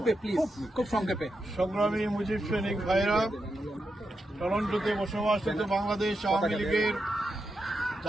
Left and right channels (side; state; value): both; normal; correlation 0.86